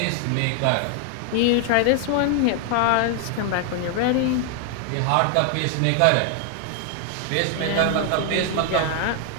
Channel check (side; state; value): both; different; correlation 0.00